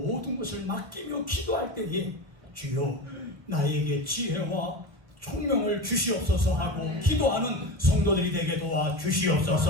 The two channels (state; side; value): late; left; 1.1 ms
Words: 것을 맡기며 기도할 때에 주여 나에게 지혜와 총명을 주시옵소서 하고 기도하는 성도들이 되게